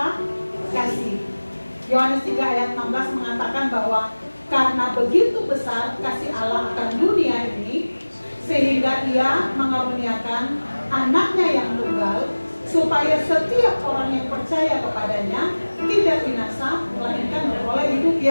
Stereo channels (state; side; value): inverted; both; correlation -1.00